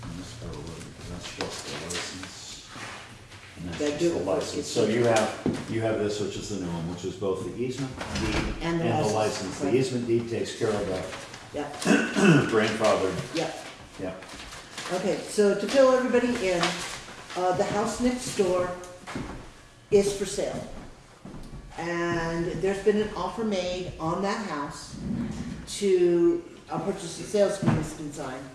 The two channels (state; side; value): identical; both; correlation 1.00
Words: That's just the license. And That that's do- just the license. So you have this, which is the new one, which is both the easement deed And the and the license, license. The right. easement deed takes care of that Yep, grandfathered. yep. Yeah. Okay, so to fill everybody in, the house next door is for sale. And there's been an offer made on that house to, a purchase and sales agreement's been signed.